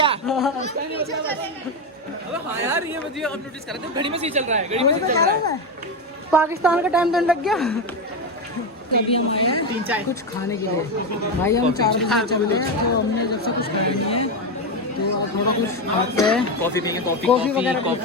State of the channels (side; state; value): both; normal; correlation 0.11